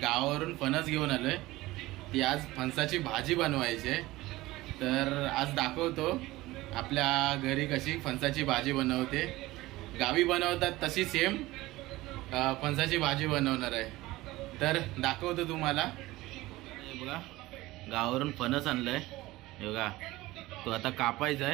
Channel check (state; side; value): quieter; left; 18.5 dB